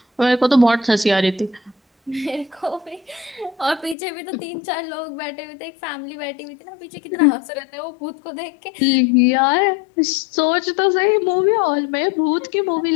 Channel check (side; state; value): right; drops out; at 4.0 s